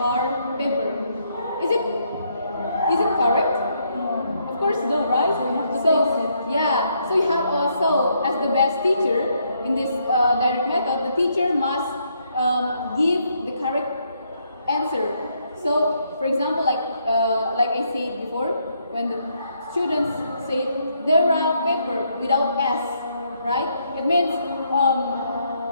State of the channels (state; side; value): inverted; both; correlation -0.74